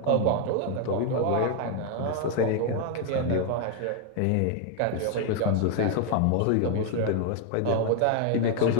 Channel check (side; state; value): both; different; correlation 0.00